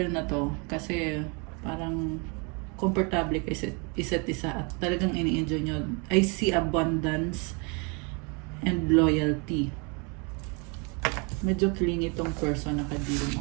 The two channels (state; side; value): quieter; left; 32.8 dB